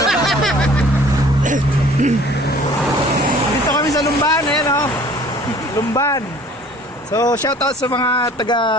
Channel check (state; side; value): normal; both; correlation 0.51